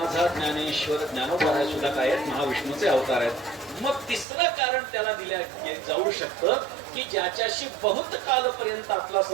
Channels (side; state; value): left; drops out; at 4.2 s